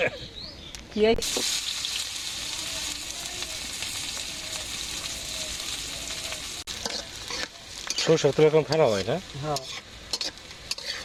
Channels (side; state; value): both; identical; correlation 1.00